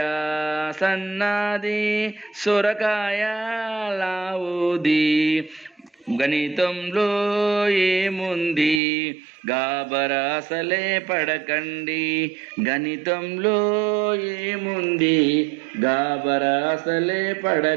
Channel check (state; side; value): drops out; left; at 8.8 s